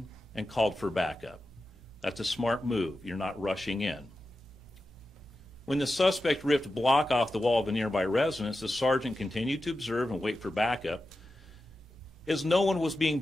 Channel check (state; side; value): normal; both; correlation 0.92